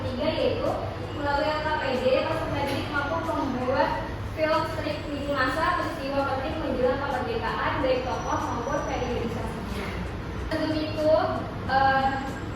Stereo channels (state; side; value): identical; both; correlation 1.00